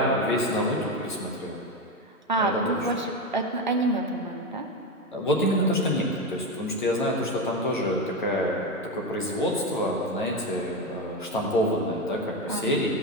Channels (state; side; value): normal; both; correlation 0.15